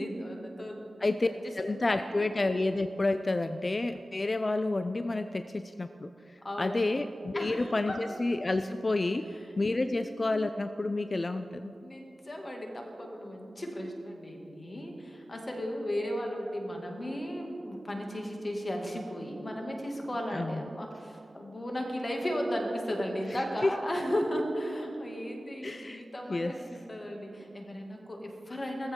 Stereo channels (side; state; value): both; normal; correlation 0.97